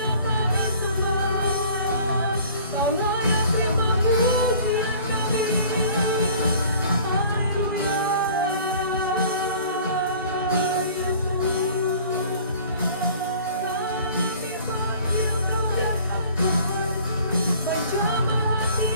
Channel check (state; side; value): inverted; both; correlation -0.49